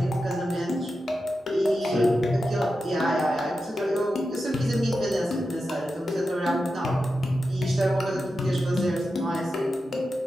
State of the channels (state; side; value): normal; both; correlation 0.90